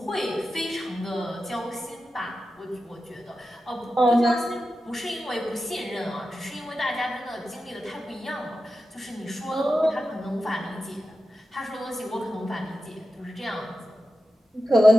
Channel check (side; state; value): both; normal; correlation 0.92